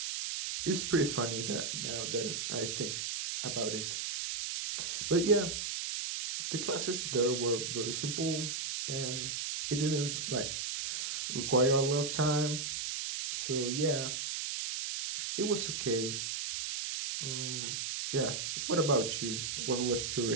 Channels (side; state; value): right; noise; hiss, 2 dB below the sound